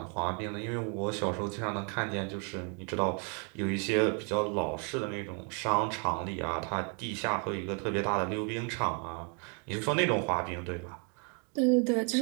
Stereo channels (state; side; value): quieter; left; 37.8 dB